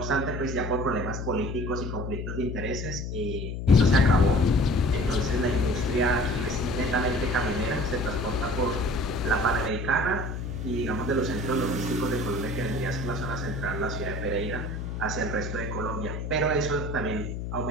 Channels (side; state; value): left; noise; hum, 5 dB below the sound